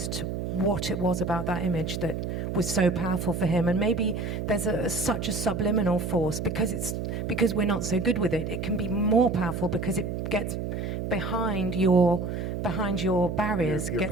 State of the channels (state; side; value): noise; right; hum, 4 dB below the sound